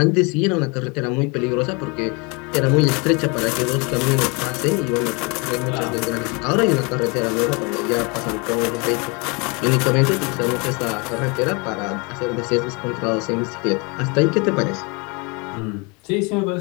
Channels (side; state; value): right; quieter; 30.0 dB